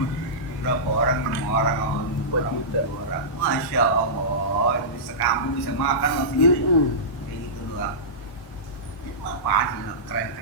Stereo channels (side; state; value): right; late; 1.1 ms